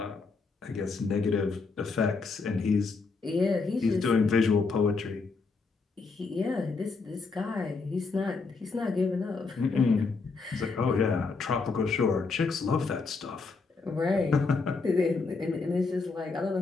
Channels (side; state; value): right; quieter; 4.3 dB